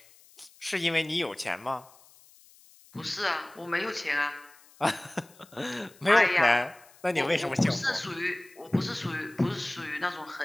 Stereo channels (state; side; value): noise; left; hiss, 26 dB below the sound